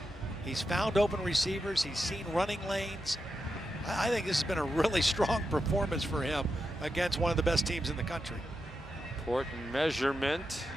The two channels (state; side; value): normal; both; correlation 0.88